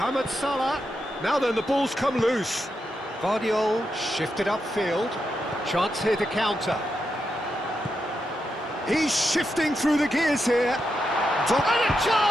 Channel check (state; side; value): normal; both; correlation 0.85